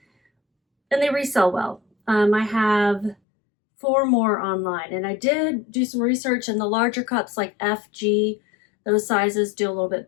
and they resell well. I have 4 more online, and I did do some research, and the larger cups like FG, those sizes do a little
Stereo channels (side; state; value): right; drops out; at 3.2 s